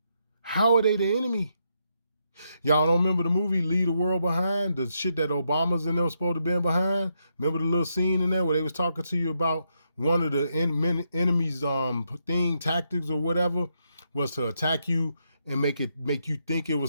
How are they the enemy? Y'all don't remember the movie Leave the World Behind? The shit that Obama's and them supposed to be behind? Remember the little scene in there where they was talking to you about one of the enemy's tactics or whatever was to attack you and make you think it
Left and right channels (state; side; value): inverted; both; correlation -0.79